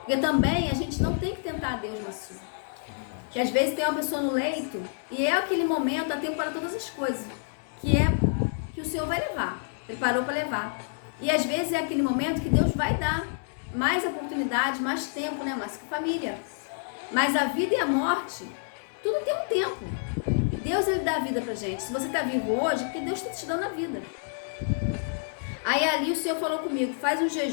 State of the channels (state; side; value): silent; right; digital silence